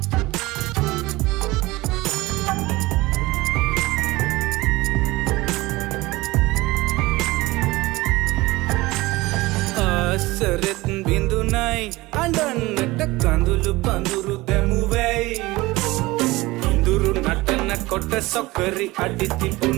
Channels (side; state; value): left; quieter; 20.5 dB